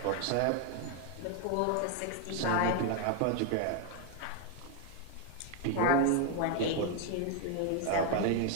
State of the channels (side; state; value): both; different; correlation 0.01